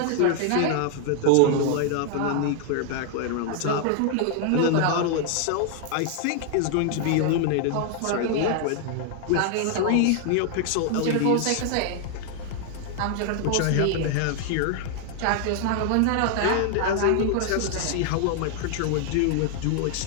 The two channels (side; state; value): both; different; correlation 0.00